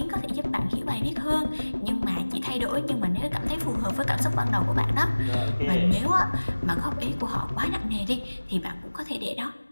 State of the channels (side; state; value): both; inverted; correlation -1.00